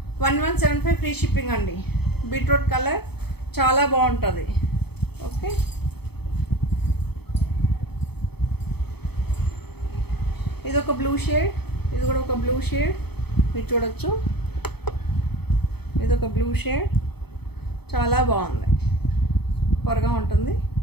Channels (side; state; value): right; late; 0.97 ms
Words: 1175 ఫ్రీ షిప్పింగ్ అండి. బీట్రూట్ కలర్ చాలా బాగుంటుంది. ఓకే, ఇది ఒక బ్లూ షేడ్, ఇది కూడా ఒక బ్లూ షేడ్ మీరు చూడొచ్చు. ఇది ఒక బ్లూ షేడ్ చాలా బాగుంది. సూపర్గా ఉంటుంది.